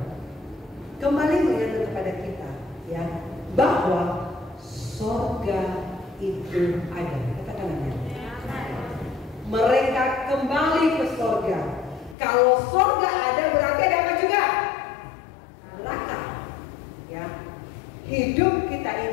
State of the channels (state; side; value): drops out; right; at 12.2 s